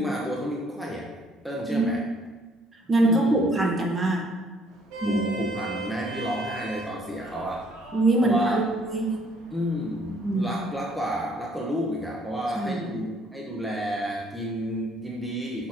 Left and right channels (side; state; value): both; normal; correlation 0.63